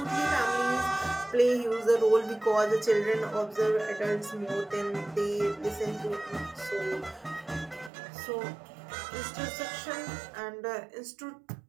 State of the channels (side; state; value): left; drops out; at 7.9 s